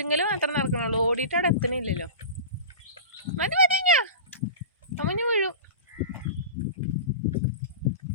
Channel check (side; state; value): both; inverted; correlation -0.31